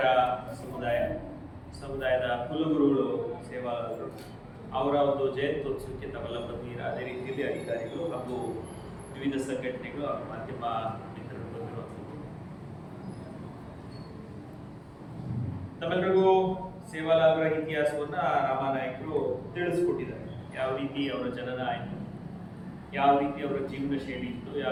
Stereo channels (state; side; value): identical; both; correlation 1.00